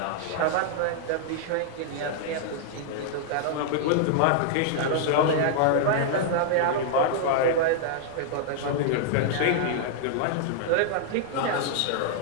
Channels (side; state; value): both; different; correlation -0.01